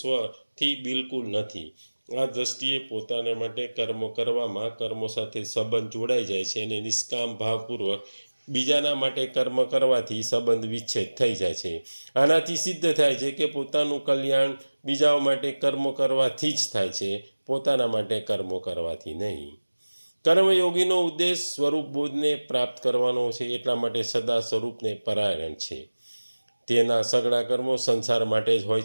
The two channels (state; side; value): inverted; both; correlation -1.00